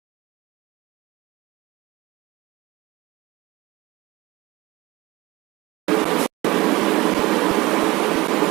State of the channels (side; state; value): left; quieter; 20.7 dB